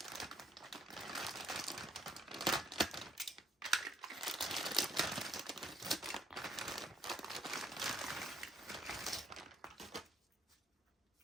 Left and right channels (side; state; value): both; normal; correlation 0.66